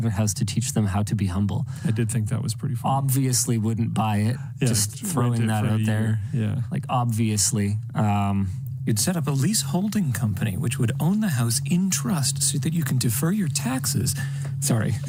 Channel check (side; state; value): both; identical; correlation 1.00